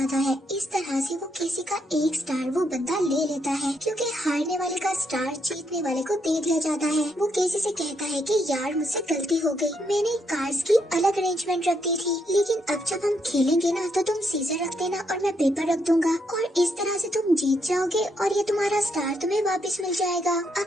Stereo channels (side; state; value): both; normal; correlation 0.77